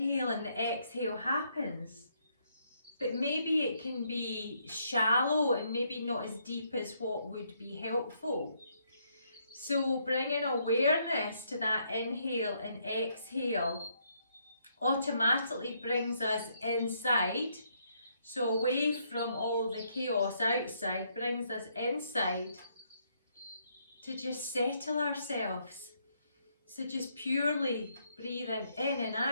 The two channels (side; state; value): both; inverted; correlation -0.73